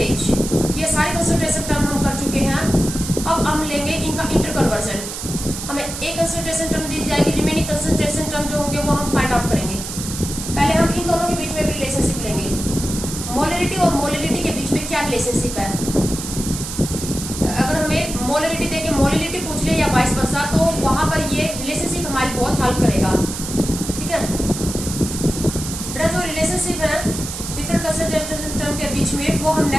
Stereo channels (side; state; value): right; noise; hiss, 7 dB below the sound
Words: ये सारे कंसंट्रेशन टर्म हम कर चुके हैं। अब हम लेंगे इनका इंटर कन्वर्जन। हमें एक कंसंट्रेशन टर्म दी जाएगी, रिमेनिंग कंसंट्रेशन टर्म जो होंगे वो हम फाइंड आउट करेंगे। पहले हम इन दोनों के बीच में भी रिलेशनशिप लेंगे। मोलिडिटी और मोलिडिटी के बीच में क्या रिलेशनशिप है? अगर हमें मोलिडिटी देके मोलिडिटी पूछ ले या वाइस वर्सा, तो वहां पर ये रिलेशनशिप हमारी बहुत हेल्प करेगा। ठीक है, जो रिलेशनशिप है डिफरेंट कंसंट्रेशन टर्म के बीच में, वो हम